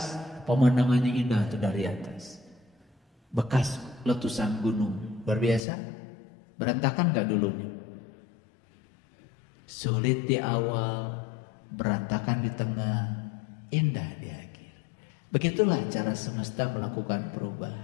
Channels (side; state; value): right; drops out; at 5.6 s